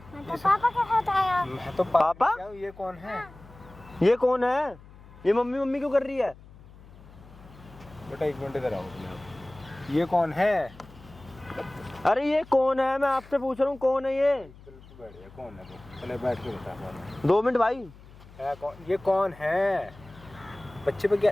मैं तो पापा के साथ आया। मैं तो पापा? क्या हूँ, ये कौन है? ये कौन है? ये मम्मी क्यों कर रही है? बेटा 1 मिनट इधर आओ तुम आप। ये कौन है? अरे ये कौन है, मैं आपसे पूछ रहा हूँ, कौन है ये? बिल्कुल बैठ गया, कौन है तो? चले बैठ के बता पाओ। 2 मिनट भाई। है कौन? ये कौन है? बच्चे पे क्या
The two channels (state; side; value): noise; left; hum, 21 dB below the sound